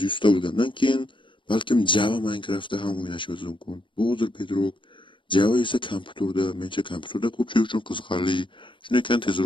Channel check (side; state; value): right; late; 0.24 ms